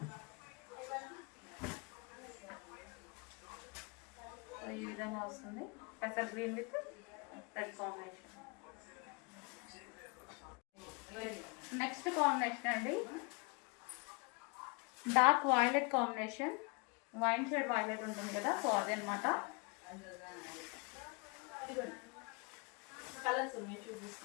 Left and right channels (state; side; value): quieter; right; 32.6 dB